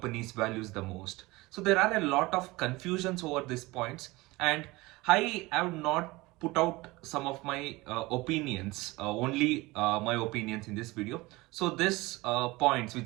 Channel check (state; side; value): quieter; left; 21.6 dB